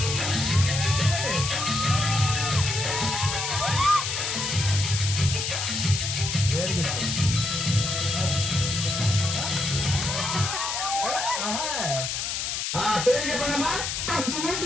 Very good. పేరు చెప్పండమ్మా.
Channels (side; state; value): left; noise; hiss, 2 dB below the sound